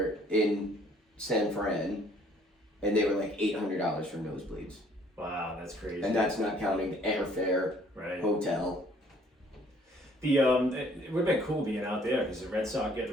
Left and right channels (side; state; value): both; normal; correlation 0.60